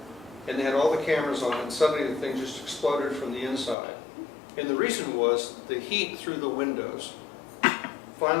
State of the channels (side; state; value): right; drops out; at 3.8 s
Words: And they had all the cameras on, and suddenly the thing just exploded from the inside. And the reason was the heat through the windows